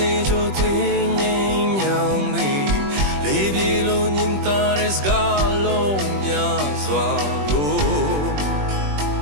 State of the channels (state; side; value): late; left; 21 ms